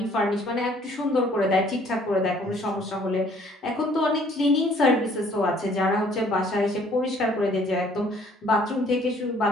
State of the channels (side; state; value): both; normal; correlation 0.59